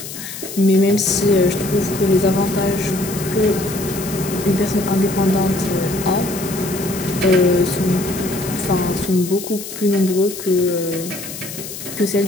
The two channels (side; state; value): left; noise; hiss, 10 dB below the sound